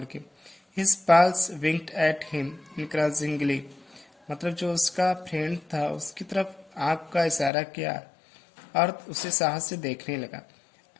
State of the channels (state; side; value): drops out; right; at 7.5 s